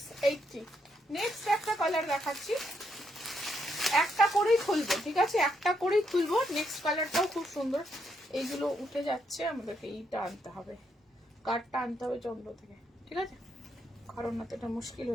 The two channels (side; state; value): both; normal; correlation 0.77